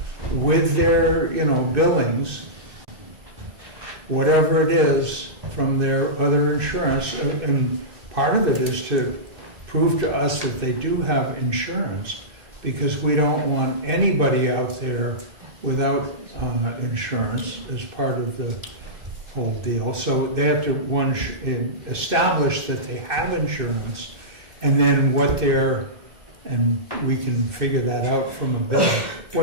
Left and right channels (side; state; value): left; late; 2.6 ms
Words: with their, billings, whatever it is from their other insurance. And part of it is to prove to us that they do have insurance, because we don't want anybody out there without insurance as part of the whole deal. So they have to, establish that they have insurance, and then and we can figure that out from a bill,